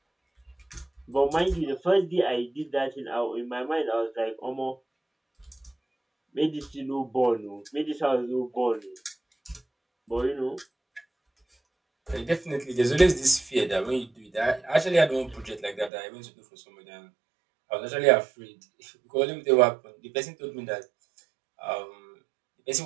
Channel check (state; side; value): drops out; left; at 15.9 s